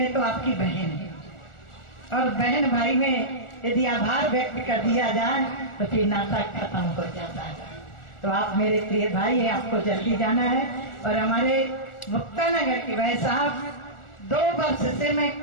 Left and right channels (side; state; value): right; late; 1.4 ms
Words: तो आपकी बहन हूँ और बहन भाई में यदि आभार व्यक्त कर दिया जाए तो फिर नाता खत्म हो जाता है। तो आप मेरे प्रिय भाई हैं, आपको जल्दी जाना है। और हमारे मुक्तानगर के भाई साहब, 2 वर्ष से मैं